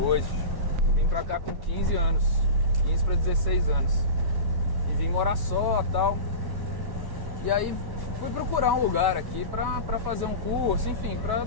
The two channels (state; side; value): late; right; 1.1 ms